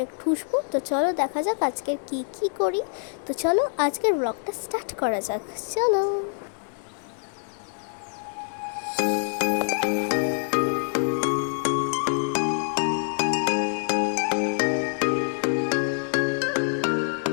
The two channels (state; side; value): silent; right; digital silence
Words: ঠুসবো। তো চলো দেখা যাক আজকের কি করি। তো চলো আজকের ব্লগটা স্টার্ট করা যাক, চলো।